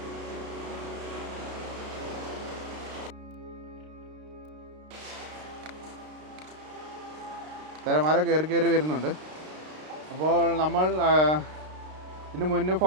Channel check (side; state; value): left; late; 32 ms